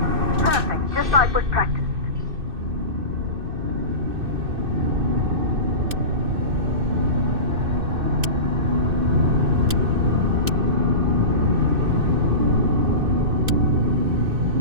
Perfect, just like was practiced.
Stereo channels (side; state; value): left; late; 2.6 ms